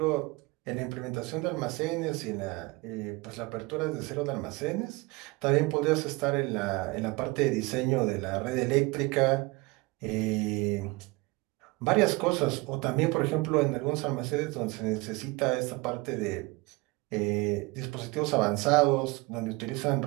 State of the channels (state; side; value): quieter; left; 24.2 dB